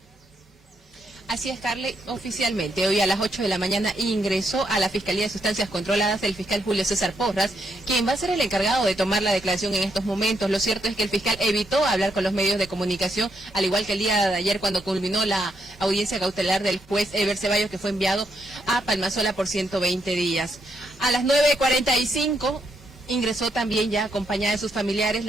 Así es, Carly, oficialmente hoy a las 8 de la mañana ingresó a la Fiscalía de Sustancias Controladas el fiscal Julio César Porras, quien va a ser el encargado de tomar la declaración en estos momentos. Lo cierto es que el fiscal evitó hablar con los medios de comunicación, al igual que el día de ayer cuando culminó la audiencia cautelar del juez Eber Ceballos, que fue enviado a Palmasola por 120 días. A las 9:45... ingresó también ya acompañada de sus familiares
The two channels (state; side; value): normal; both; correlation 0.78